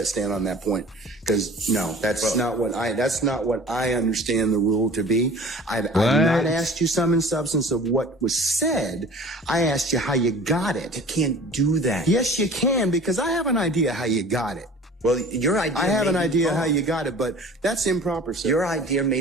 stand on that point. Because no, that's not what I understand the rule to be. I've not asked you sum and substance of what was said. I asked you how you got it. You can't do that. Yes, you can, because I have an idea how you got it. Well, your idea. I have an idea how you got it, but that's improper, sir. Your idea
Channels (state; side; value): normal; both; correlation 0.44